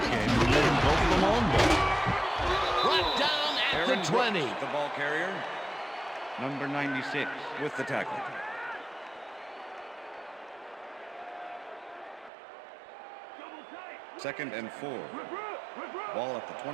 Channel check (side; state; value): left; drops out; at 12.3 s